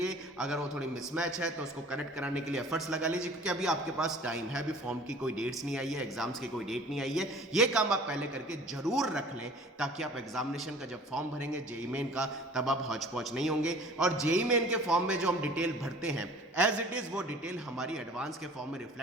अगर वो थोड़ी मिसमैच है तो उसको करेक्ट कराने के लिए एफर्ट्स लगा लीजिए, क्योंकि अभी आपके पास टाइम है। अभी फॉर्म की कोई डेट्स नहीं आई है, एग्जाम्स की कोई डेट नहीं आई है। ये काम आप पहले करके जरूर रख लें ताकि आप एग्जामिनेशन का जब फॉर्म भरेंगे जेईई मेन का, तब आप हौच पौच नहीं होंगे। और जेईई मेन के फॉर्म में जो हम डिटेल भरते हैं एज इट इज वो डिटेल हमारी एडवांस के फॉर्म में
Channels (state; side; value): normal; both; correlation 0.47